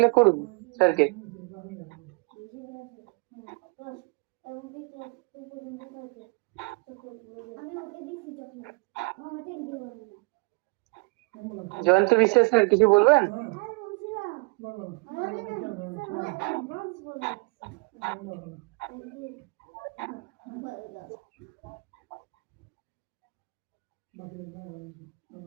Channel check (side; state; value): left; quieter; 32.2 dB